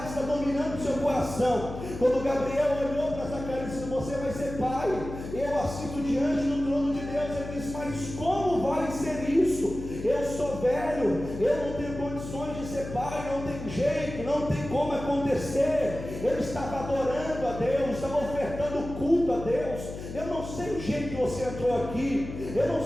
está dominando o seu coração. Quando Gabriel olhou para Zacarias e disse: você vai ser pai, eu assisto diante do trono de Deus, ele disse: mas como vai ser isso? Eu sou velho, eu não tenho condições de ser pai, não tem jeito, não tem como acontecer. Ele estava adorando a Deus, estava ofertando culto a Deus. Eu não sei o jeito que você entrou aqui, eu não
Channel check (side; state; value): left; noise; hum, 9 dB below the sound